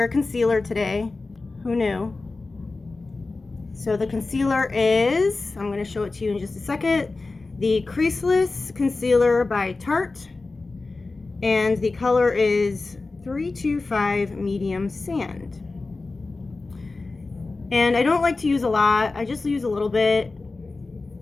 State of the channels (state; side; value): quieter; right; 3.6 dB